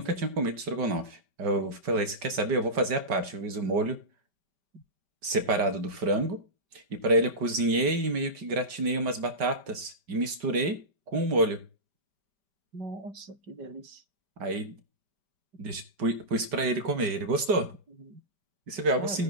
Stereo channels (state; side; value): late; left; 5.1 ms